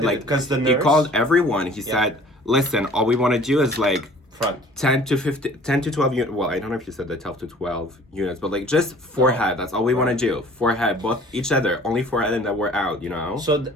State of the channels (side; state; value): both; normal; correlation 0.50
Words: did like it, 'cause the he nurse- called everyone. He said, listen, all we want to do is like front. 10 to 12 units. Well, I don't know if you said the 12 to 12 units, but like just forehead. That's all we want to do. Forehead, both each other, only forehead, and then we're out. So